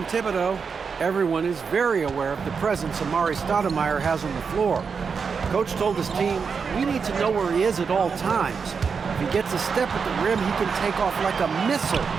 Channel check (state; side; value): quieter; left; 5.7 dB